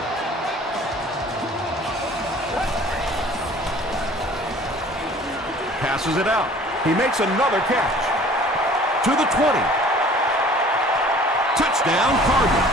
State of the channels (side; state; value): both; normal; correlation 0.50